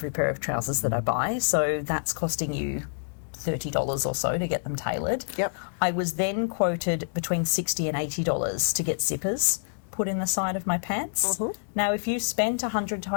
pair of trousers that I buy, so that's costing you $30 or so to get them tailored. I was then quoted between $60 and $80 to get zippers put in the side of my pants. Now, if you spend $100 to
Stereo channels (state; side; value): silent; right; digital silence